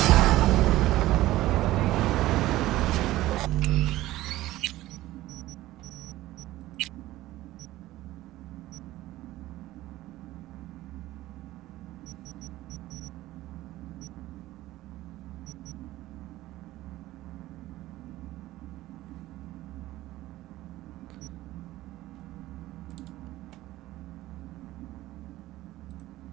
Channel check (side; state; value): left; quieter; 16.3 dB